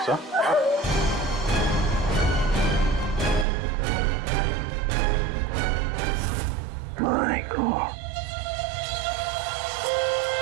सर? My God.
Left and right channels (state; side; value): drops out; left; at 3.5 s